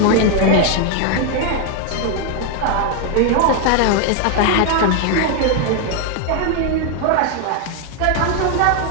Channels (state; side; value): different; both; correlation 0.01